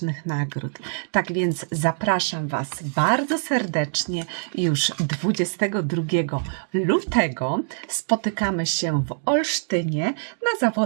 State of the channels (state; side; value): silent; left; digital silence